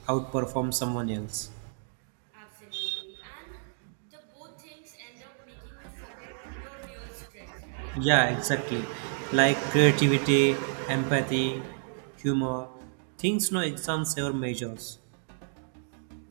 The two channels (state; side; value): silent; left; digital silence